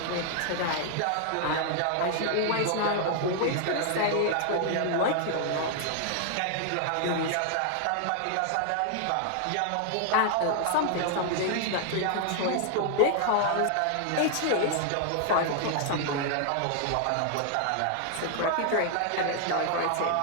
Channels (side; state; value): both; different; correlation 0.00